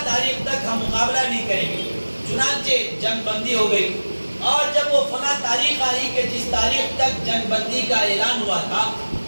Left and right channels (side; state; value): both; inverted; correlation -1.00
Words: تاریخ تک ہم مقابلہ نہیں کریں گے۔ چنانچہ جنگ بندی ہو گئی، اور جب وہ فلاں تاریخ آئی کہ جس تاریخ تک جنگ بندی کا اعلان ہوا تھا،